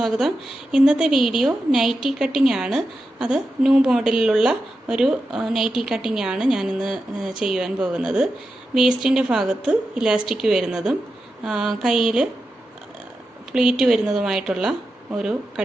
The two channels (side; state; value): both; normal; correlation 0.89